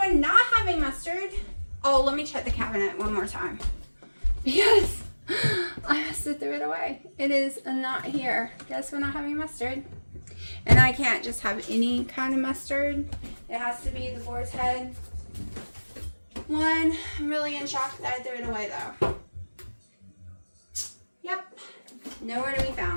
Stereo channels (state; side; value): inverted; both; correlation -1.00